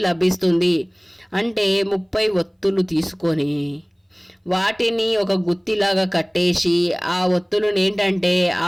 లభిస్తుంది. అంటే 30 ఒత్తులు తీసుకొని వాటిని ఒక గుత్తిలాగా కట్టేసి ఆ ఒత్తులను ఏంటంటే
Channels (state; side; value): identical; both; correlation 1.00